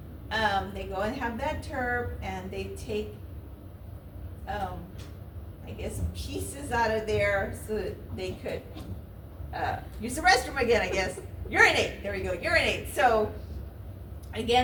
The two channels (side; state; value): both; identical; correlation 1.00